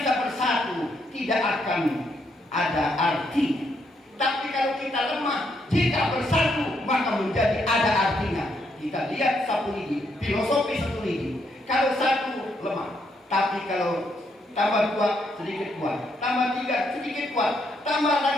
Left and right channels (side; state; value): both; normal; correlation 0.76